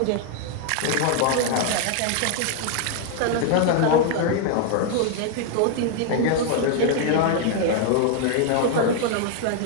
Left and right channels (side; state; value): both; different; correlation 0.00